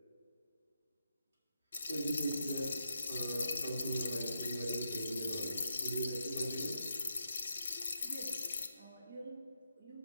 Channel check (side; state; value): both; inverted; correlation -0.81